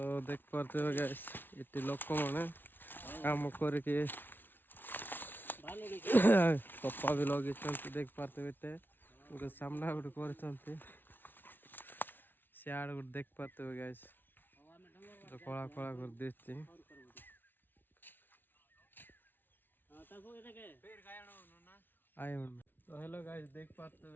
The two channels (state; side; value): late; right; 0.096 ms